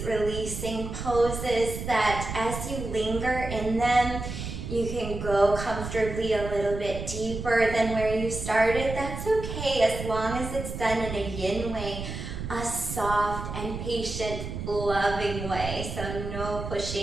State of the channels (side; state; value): right; noise; rumble, 7 dB below the sound